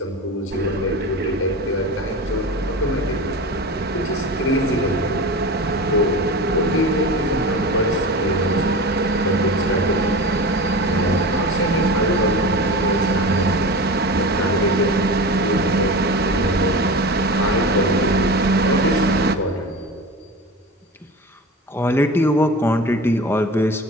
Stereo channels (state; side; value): normal; both; correlation 0.30